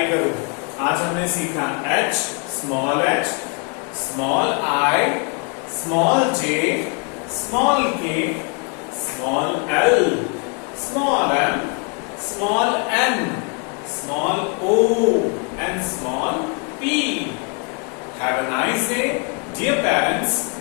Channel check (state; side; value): quieter; right; 35.4 dB